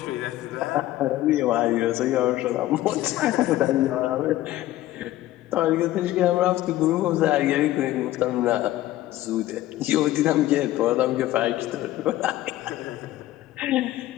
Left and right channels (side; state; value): right; quieter; 15.1 dB